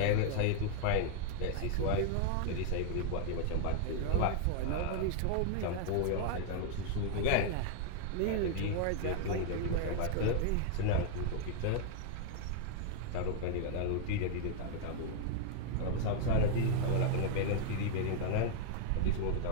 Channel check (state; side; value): different; both; correlation 0.00